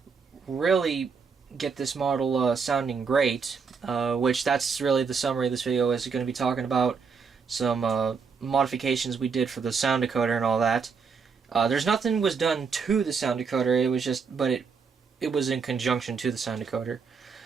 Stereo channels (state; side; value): quieter; left; 5.5 dB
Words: really get this model sounding great, which that's really the summary of this video is going to be talking about some modifications we did for the sound decoder and all that. There's nothing was done to the sound decoder, it was just, but it was in conjunction to the sound decoder.